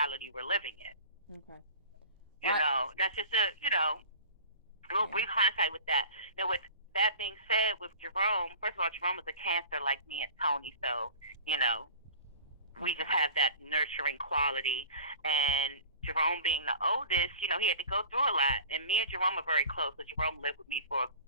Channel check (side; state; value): both; inverted; correlation -0.41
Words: we're living in. Okay. You know, that's just a little brief hindsight with that. Now, with that being said, with Jerome, first of all, Jerome was a Cancer like me and Tony, so, you know, we just have that nurturing quality. And Jerome being the oldest, you know, he had to go through a lot. And me and Jerome are very close, so Jerome lived with me for